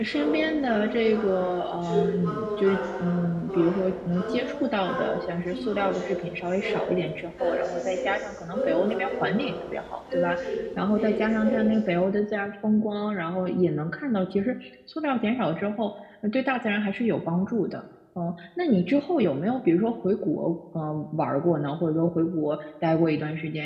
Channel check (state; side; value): identical; both; correlation 1.00